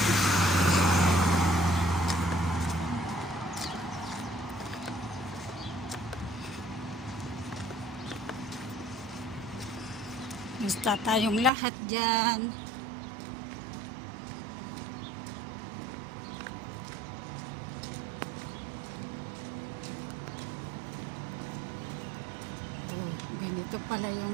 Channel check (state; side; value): drops out; left; at 11.5 s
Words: Basta tayong lahat dyan. Oh, ganito pala